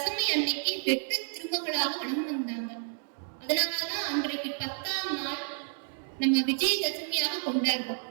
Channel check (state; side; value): silent; left; 57 dB below the other